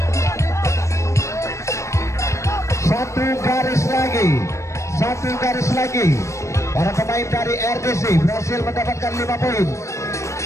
Satu garis lagi. Satu garis lagi. Para pemain dari RDC berhasil mendapatkan 5 poin.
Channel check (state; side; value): late; right; 0.14 ms